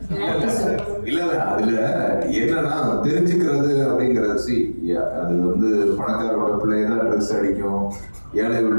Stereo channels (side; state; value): both; inverted; correlation -1.00